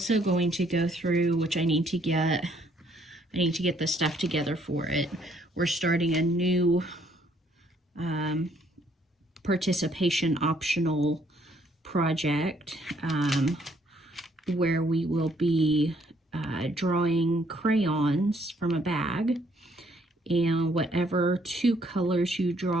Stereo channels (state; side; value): normal; both; correlation 0.67